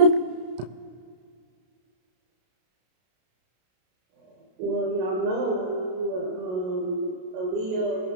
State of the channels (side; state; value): left; late; 33 ms